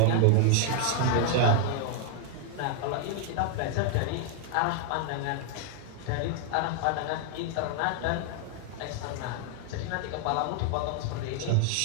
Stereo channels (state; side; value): different; both; correlation 0.00